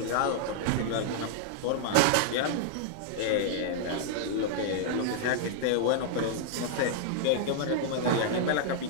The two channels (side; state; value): both; different; correlation -0.01